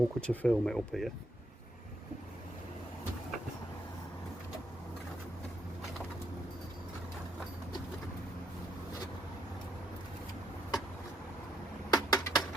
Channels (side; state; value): both; normal; correlation 0.76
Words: to film it up here.